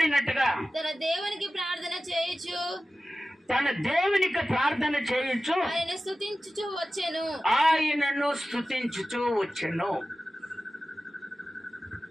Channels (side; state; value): both; normal; correlation 0.95